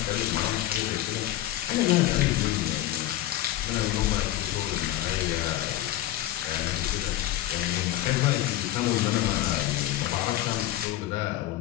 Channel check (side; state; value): right; quieter; 13.9 dB